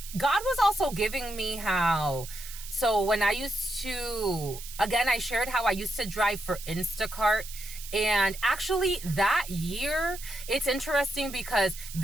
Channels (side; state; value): right; noise; hiss, 13 dB below the sound